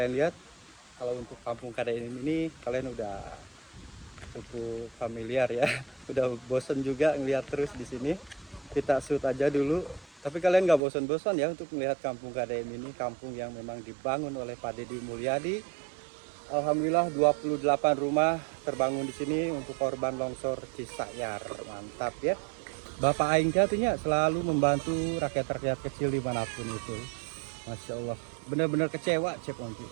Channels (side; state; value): left; drops out; at 10.8 s